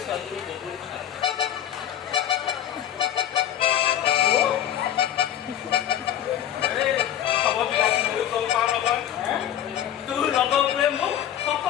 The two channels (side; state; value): right; quieter; 10.9 dB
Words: ছোৱালীজনী বহুত ভাল। খবৰবিলাক মই গম পাওঁ নহয়। তোৰ লগৰবোৰে মোক